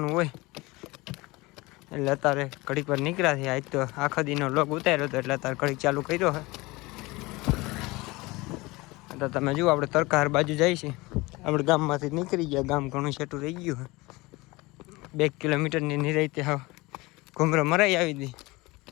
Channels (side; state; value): right; quieter; 22.5 dB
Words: હોય એટલે અત્યારે ઘડીક વાર નીકળ્યા છે. આજ તો આખો દીનો લોગ ઉતાર્યો હતો એટલે અત્યારે ઘડીક ચાલુ કર્યો છે. તો તમે જુઓ આપણે તરકાર બાજુ જાય છે. આપણે ગામમાંથી નીકળી ગયા, ગામ ઘણું છેટું રહી ગયું. 2 કિલોમીટરની નિરાયતે હા ઘૂમરો મરાઈ આવી હતી